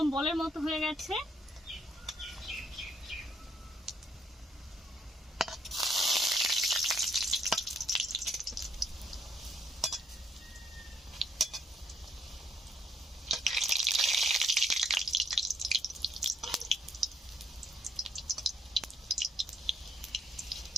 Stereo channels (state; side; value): normal; both; correlation 0.69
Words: বলের মতো হয়ে গেছে।